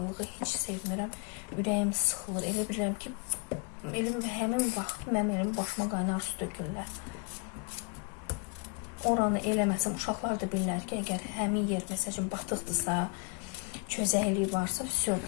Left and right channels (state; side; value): quieter; right; 32.3 dB